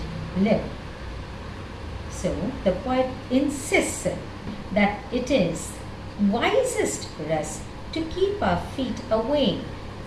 live. So the poet insists that it is wisest for us to keep our feet away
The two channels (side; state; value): both; identical; correlation 1.00